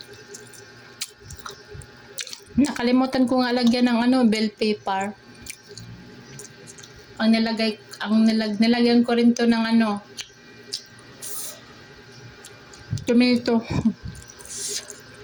Nakalimutan ko nga lagyan ng bell pepper. Nilagyan ko rin to ng tomato.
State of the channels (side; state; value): both; identical; correlation 1.00